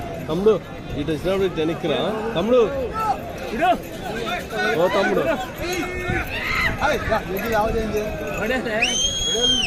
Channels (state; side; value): identical; both; correlation 1.00